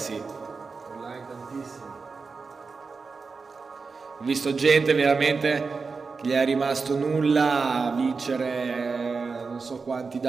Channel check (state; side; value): quieter; left; 4.6 dB